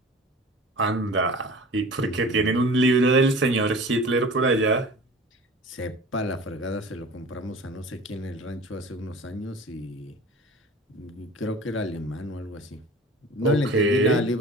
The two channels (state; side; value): normal; both; correlation 0.40